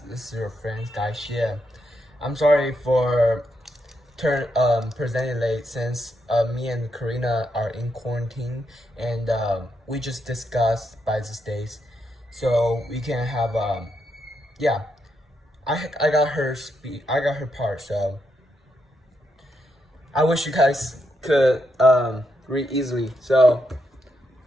this is your friend Guy Xie. I'm sorry for presenting late since me and Karina are in quarantine and we just discussed by these days, so we can have yeah. I got I got her part, so I wish you guys could read easily. So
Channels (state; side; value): normal; both; correlation 0.81